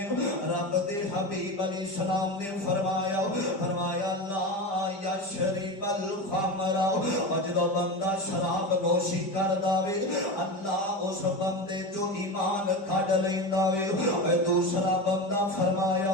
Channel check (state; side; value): late; right; 5.1 ms